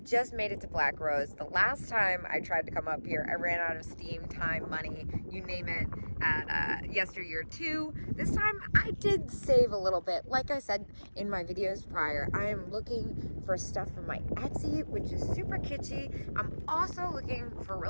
just made it to Black Rose. The last time I tried to come up here, I ran out of steam, time, money, you name it, at yesteryear too. This time I did save a little bit. Like I said in my videos prior, I am looking for stuff from my Etsy, which is super kitschy. I'm also looking for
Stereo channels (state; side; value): inverted; both; correlation -1.00